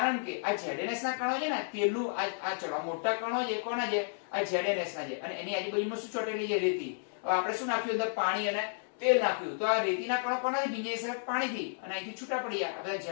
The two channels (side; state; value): right; silent; digital silence